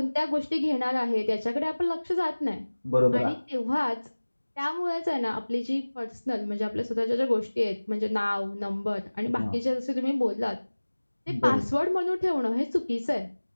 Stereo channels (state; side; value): inverted; both; correlation -1.00